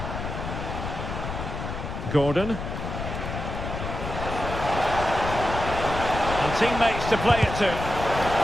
Gordon. And teammates to play it to.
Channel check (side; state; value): left; noise; rumble, 6 dB below the sound